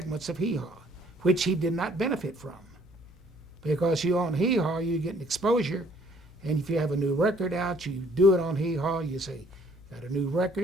of Hee Haw, which he did not benefit from. Because you own Hee Haw, you get an exposure, and if you have a new record out, you do it on Hee Haw, you say, got a new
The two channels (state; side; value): normal; both; correlation 0.61